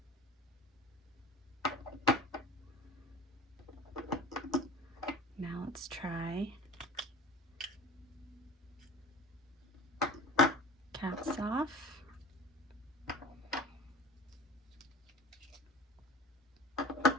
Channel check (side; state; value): both; normal; correlation 0.40